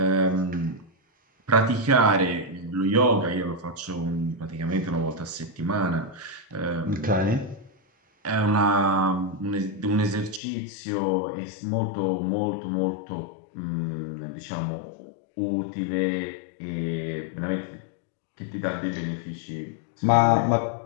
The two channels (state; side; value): drops out; right; at 10.4 s